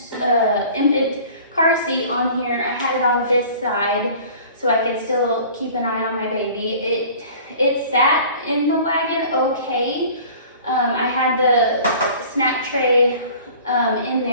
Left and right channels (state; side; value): inverted; both; correlation -0.46